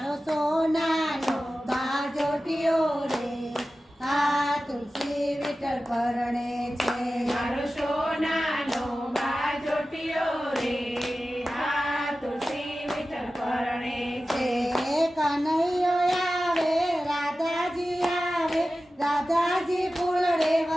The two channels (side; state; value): both; normal; correlation 0.95